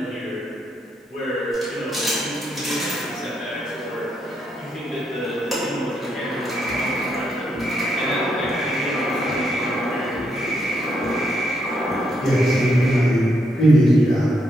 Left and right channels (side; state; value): both; normal; correlation 0.78